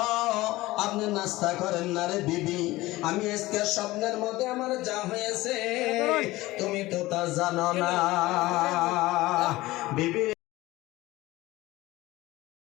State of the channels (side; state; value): right; quieter; 18.7 dB